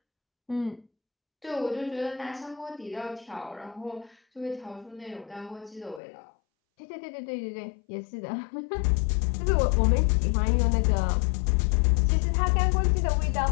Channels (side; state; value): right; drops out; at 6.0 s